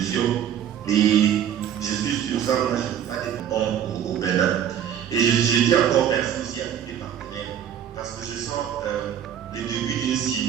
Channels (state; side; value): quieter; left; 9.6 dB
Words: Et je suis sûr, ça, moi, je ne peux pas être bon au Bénin. Et je dis encore merci aussi à tous les partenaires, parce que je sens le début d'une